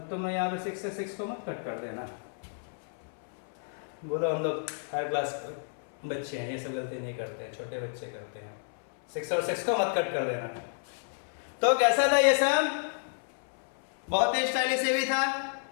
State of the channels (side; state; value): right; silent; 57 dB below the other